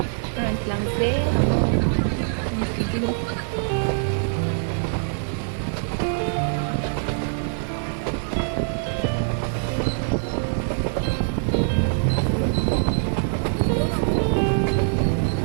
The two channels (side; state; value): left; silent; digital silence